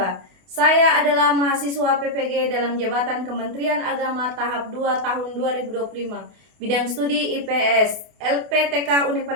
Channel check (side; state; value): left; late; 28 ms